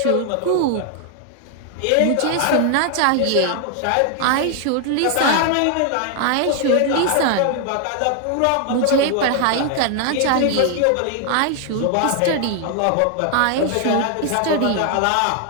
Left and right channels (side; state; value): both; different; correlation 0.00